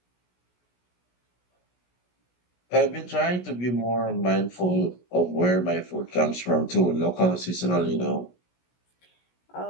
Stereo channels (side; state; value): right; late; 16 ms